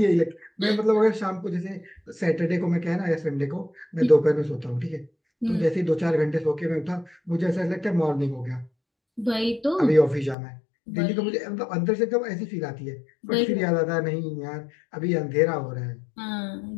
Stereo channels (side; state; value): right; drops out; at 10.4 s